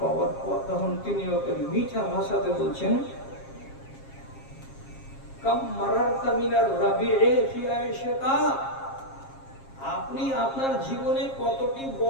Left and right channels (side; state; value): right; late; 7.4 ms